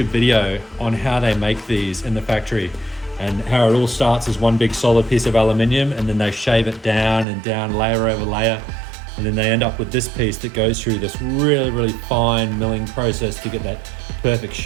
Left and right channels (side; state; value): left; drops out; at 7.2 s